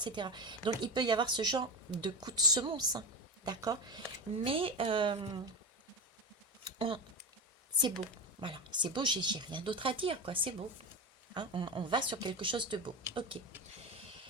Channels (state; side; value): normal; both; correlation 0.19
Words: Donc il peut y avoir ce genre de coup de semonce, hein, d'accord? Mais c'est beau, voilà, c'est beau, j'ai rien d'autre à dire, quoi, c'est beau. Hein, on va sur quelque chose de beau. Ok.